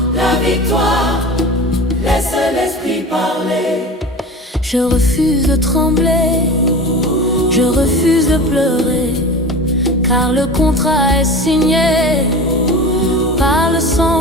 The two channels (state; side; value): normal; both; correlation 0.33